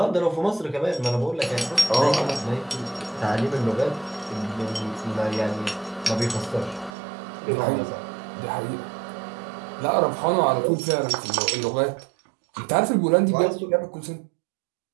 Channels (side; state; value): left; drops out; at 6.9 s